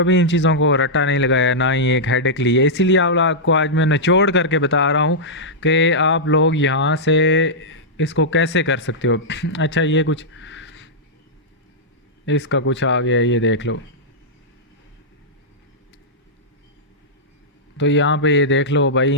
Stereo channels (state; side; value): normal; both; correlation -0.10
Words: इन चीज़ों को रट्टा नहीं लगाया, ना ही एक हेडेक ली है। इसीलिए आप आपको आज मैं निचोड़ करके बता रहा हूँ कि आप लोग यहाँ से इसको कैसे कर सकते हो। अच्छा ये कुछ इसका कुछ आ गया, ये देख लो। तो यहाँ पे ये देख लो भाई,